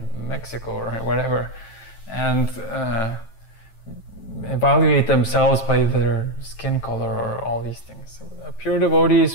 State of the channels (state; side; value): late; right; 9.1 ms